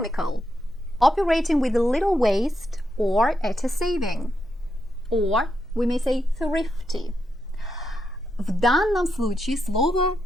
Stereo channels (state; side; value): noise; left; hum, 28 dB below the sound